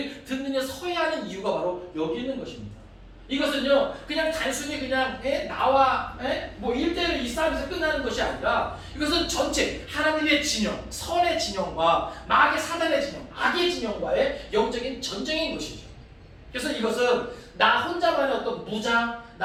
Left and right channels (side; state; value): both; identical; correlation 1.00